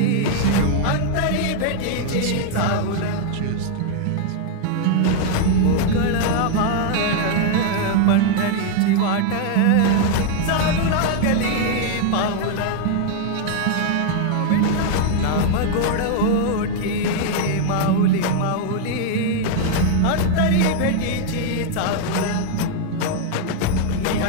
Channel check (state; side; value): different; both; correlation 0.00